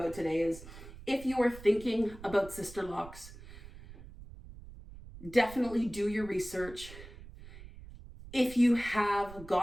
today is, if you are thinking about Sisterlocks, definitely do your research. If you have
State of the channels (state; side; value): noise; right; rumble, 16 dB below the sound